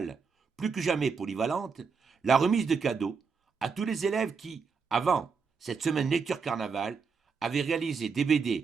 plus que jamais polyvalente, la remise de cadeaux à tous les élèves qui, avant cette semaine lecture carnaval, avaient réalisé des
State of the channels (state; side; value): quieter; left; 5.4 dB